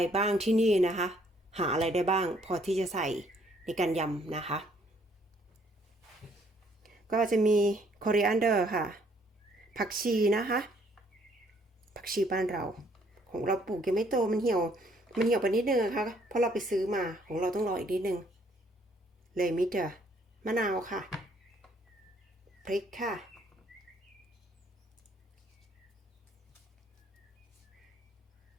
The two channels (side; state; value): both; normal; correlation 0.65